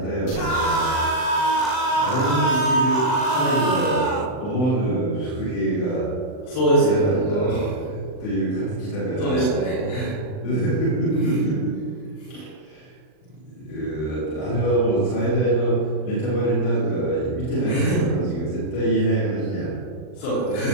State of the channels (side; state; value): right; late; 39 ms